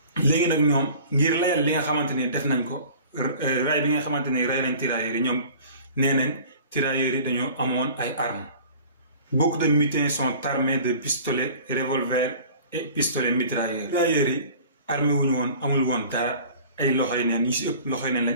léegi nag ñoom ngir layal li nga xamante ni def nañ ko ray bi nga xamante ni ray nañ tirailleurs yi ñoom nee nañ tirailleurs yi dañoo amoon ay armes. Beaucoup de mutins sont armés de pistolets, revolvers et pistolets mitrailleurs. Tirailleurs yi armé wuñu woon amul woon dara ay loxoy neen yi si ëpp loxoy neen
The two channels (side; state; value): both; inverted; correlation -0.45